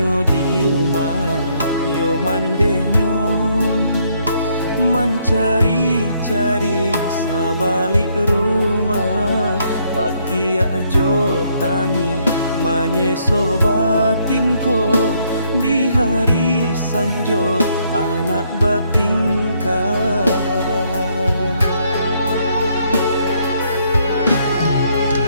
di yo mandenyo. Mencari-cari sabalik rumah, pakai ajo tangi manyeso batinko. Di hari sanjo anak batingkah.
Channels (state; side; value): inverted; both; correlation -0.71